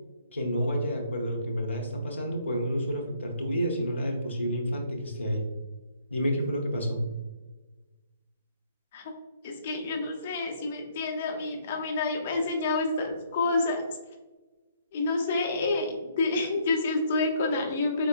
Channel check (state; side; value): inverted; both; correlation -0.66